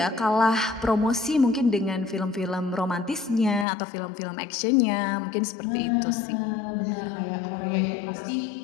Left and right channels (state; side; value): drops out; right; at 3.7 s